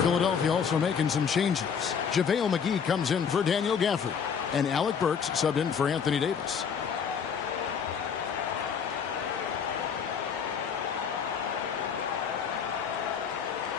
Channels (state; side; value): quieter; right; 6.9 dB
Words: Philadelphia also making some changes. JaVale McGee comes in for Daniel Gafford. And Alec Burks subbed in for Anthony Davis.